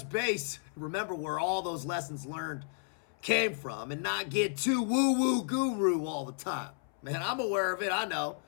base, remember where all those lessons learned came from, and not get too woo-woo guru all the time. Man, I'm aware of it, I know.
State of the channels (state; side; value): silent; right; 56 dB below the other